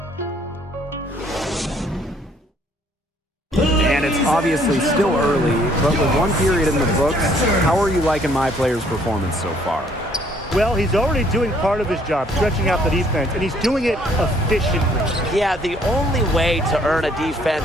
And it's obviously still early, but with one period in the books, how are you liking my player's performance so far? Well, he's already doing part of his job, stretching out the defense, and he's doing it efficiently. Yeah, the only way to earn a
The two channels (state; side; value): normal; both; correlation 0.63